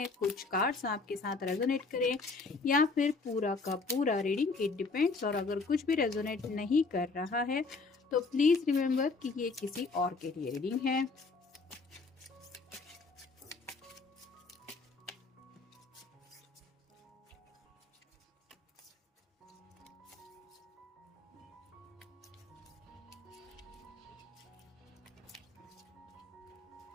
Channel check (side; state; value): right; quieter; 4.0 dB